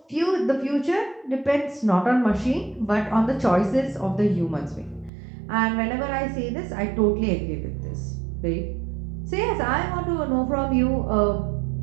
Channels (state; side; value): drops out; left; at 5.1 s